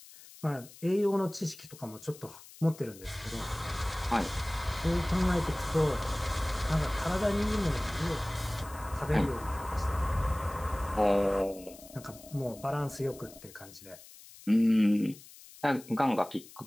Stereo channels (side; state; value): left; noise; hiss, 20 dB below the sound